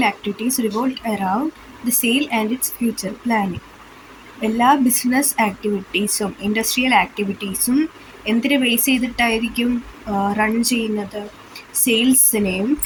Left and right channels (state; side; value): identical; both; correlation 1.00